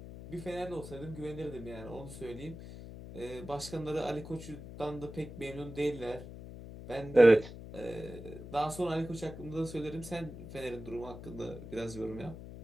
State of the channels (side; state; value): left; noise; hum, 12 dB below the sound